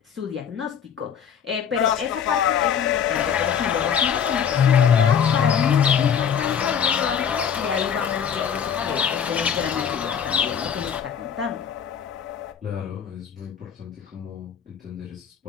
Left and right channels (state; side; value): quieter; right; 7.9 dB